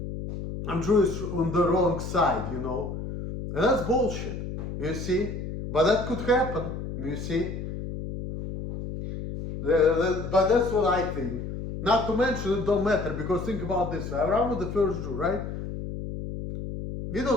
I'm Jewish on the wrong side, you know. And that's bullshit, you see. But that could happen, you see. But that's what I think. Not to mention it don't matter, because think about this. Abraham was the first Jew, right? We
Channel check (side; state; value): left; noise; hum, 7 dB below the sound